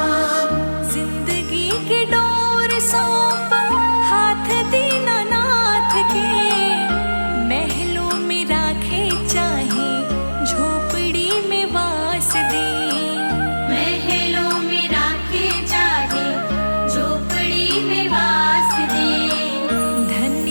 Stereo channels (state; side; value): inverted; both; correlation -1.00